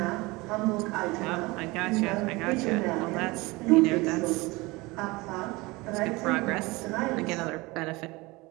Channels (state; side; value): quieter; left; 23.0 dB